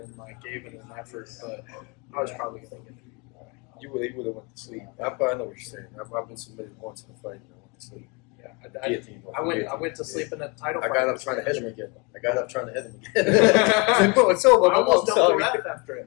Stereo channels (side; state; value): right; quieter; 30.0 dB